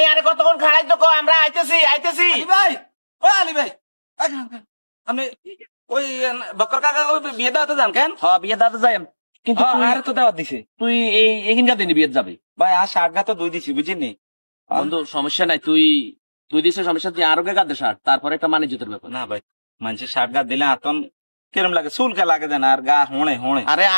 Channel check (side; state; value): both; inverted; correlation -1.00